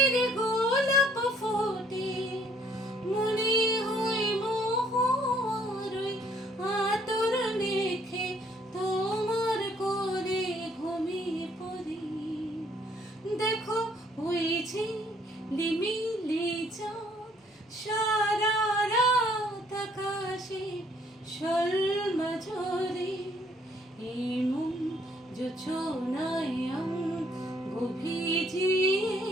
গোলাপ ফোটে। মনে হয় মোহর ওই আতর মেখে তোমার কোলে ঘুমিয়ে পড়ি। দেখো হয়েছে লিমিলি চাঁদ সারা রাত আকাশে শোলমা ঝরে। এই মন যোজনায় অঙ্গ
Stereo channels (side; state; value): both; normal; correlation 0.64